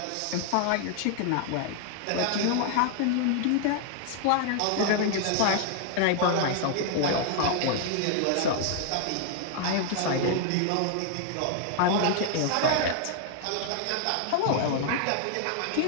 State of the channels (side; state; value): both; different; correlation 0.00